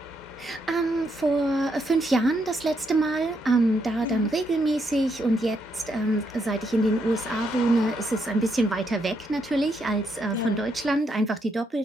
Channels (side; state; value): both; normal; correlation 0.77